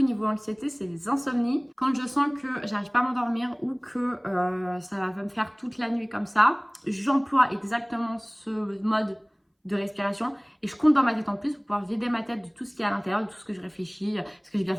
niveau anxiété, c'est les insomnies. Quand je sens que j'arrive pas à m'endormir ou que ça va me faire toute la nuit comme ça, j'emploie exactement ce mode de respiration et je compte dans ma tête en plus pour pouvoir vider ma tête de tout ce qui est à l'intérieur, de tout ce que je réfléchis. Est-ce que j'ai bien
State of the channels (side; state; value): both; identical; correlation 1.00